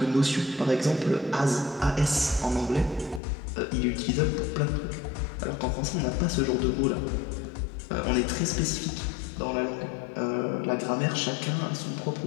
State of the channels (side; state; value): right; drops out; at 3.2 s